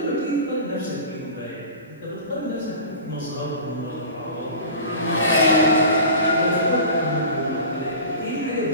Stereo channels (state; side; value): inverted; both; correlation -0.36